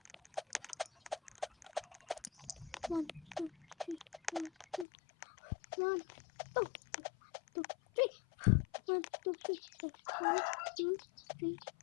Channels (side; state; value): right; drops out; at 4.9 s